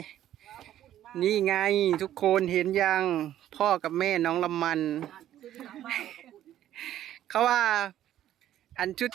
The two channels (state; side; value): quieter; left; 12.1 dB